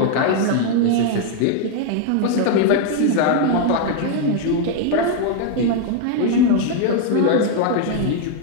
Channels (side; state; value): both; different; correlation 0.00